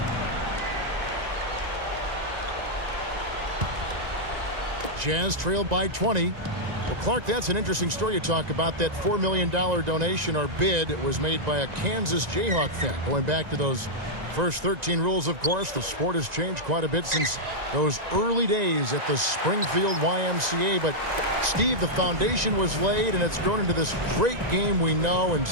Jazz trailed by 20. Well, Clark, that's an interesting story you talk about. That $4 million donation or bid was made by a Kansas Jayhawk fan. Going back to those first 13 rules, of course, the sport has changed quite a bit since those early days at the Springfield YMCA. But, Steve, the foundation was laid, and it's grown into this great game we know and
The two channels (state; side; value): late; left; 1.9 ms